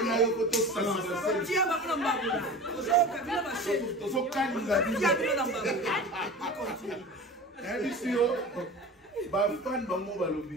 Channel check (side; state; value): both; normal; correlation 0.35